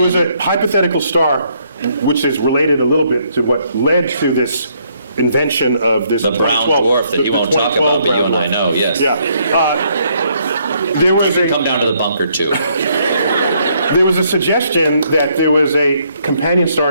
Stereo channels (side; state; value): both; inverted; correlation -0.70